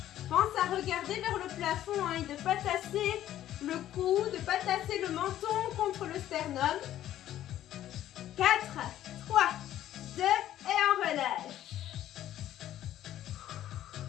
Pense à regarder vers le plafond hein, et de ne pas tasser le cou, de ne pas tasser le menton contre le sternum. 4, 3, 2 et on relâche.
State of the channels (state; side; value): quieter; right; 12.5 dB